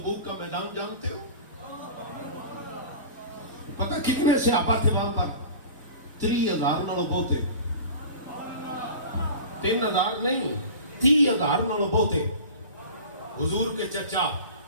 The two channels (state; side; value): inverted; both; correlation -0.37